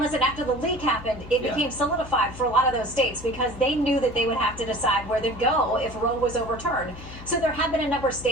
listen, after the leak happened, it became solidified for a lot of those states because they knew that they would have to decide where to go if Roe was overturned. So there have been a number of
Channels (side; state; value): left; noise; hum, 14 dB below the sound